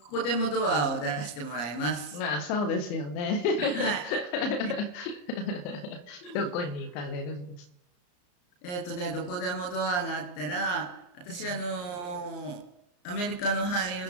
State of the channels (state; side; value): late; right; 34 ms